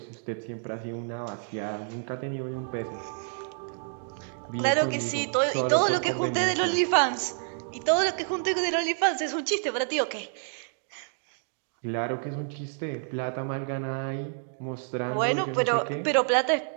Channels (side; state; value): left; silent; 59 dB below the other